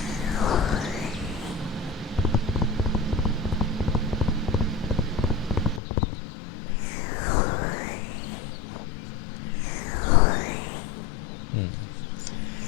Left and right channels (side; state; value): right; drops out; at 5.8 s